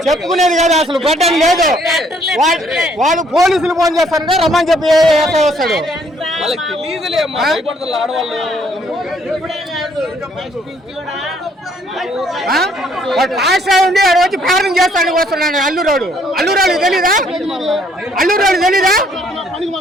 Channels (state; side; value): normal; both; correlation 0.65